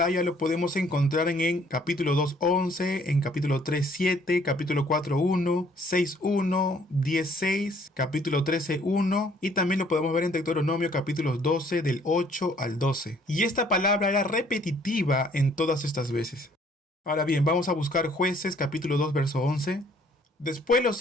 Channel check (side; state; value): both; normal; correlation 0.61